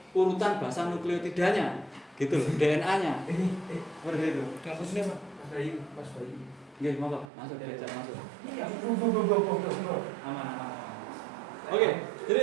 urutan bahasa nukleotidanya, gitu loh, DNA-nya. Seperti itu. Kasusnya Pak? Mas Bayu. Nggih, monggo masuk belajar masuk. Iya, Aman. Oke,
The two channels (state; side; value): drops out; left; at 7.3 s